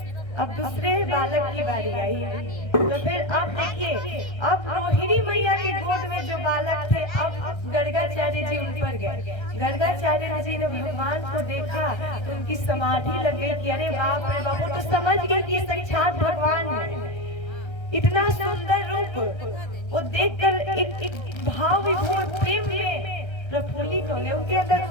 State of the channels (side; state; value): right; late; 1.3 ms